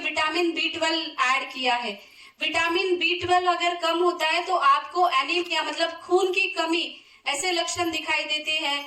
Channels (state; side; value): identical; both; correlation 1.00